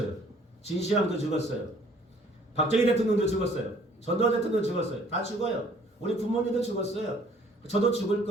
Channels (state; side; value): normal; both; correlation 0.57